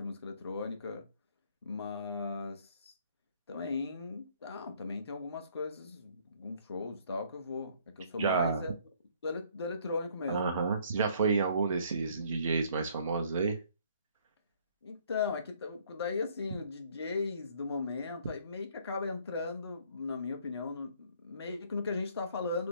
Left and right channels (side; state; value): both; inverted; correlation -0.61